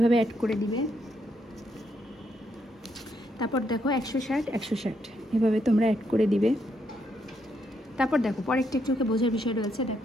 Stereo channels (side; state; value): both; normal; correlation 0.77